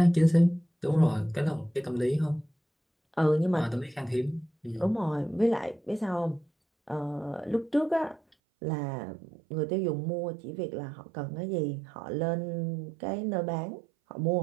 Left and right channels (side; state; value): left; drops out; at 8.2 s